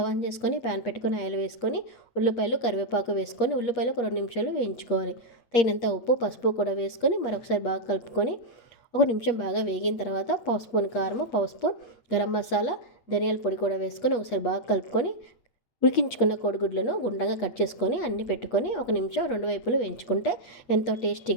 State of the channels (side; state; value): right; late; 8.3 ms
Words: ఆన్ చేసుకొని ప్యాన్ పెట్టుకొని ఆయిల్ వేసుకొని ఉల్లిపాయలు, కరివేపాకు వేసుకొని ఉల్లిపాయలు ఒక 2 నిమిషాలు వేయించుకోవాలి. తగినంత ఉప్పు, పసుపు కూడా వేసుకొని మరొకసారి బాగా కలుపుకొని ఒక నిమిషం బాగా వేగిన తర్వాత పావు స్పూన్ కారము, పావు స్పూన్ గరం మసాలా, ధనియాల పొడి కూడా వేసుకొని ఒకసారి బాగా కలుపుకొని ఉడికించుకున్న కోడిగుడ్లను గుండ్రంగా కట్ చేసుకొని అన్ని పెట్టుకొని ఒక నిమిషం 2 వైపులు వేయించుకుంటే ఎంతో